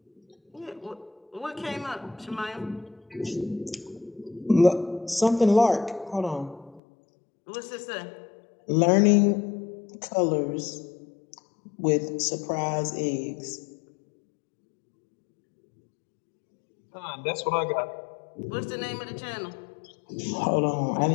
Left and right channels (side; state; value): right; drops out; at 6.8 s